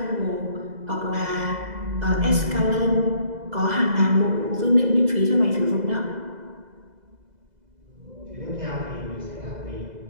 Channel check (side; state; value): left; late; 2.0 ms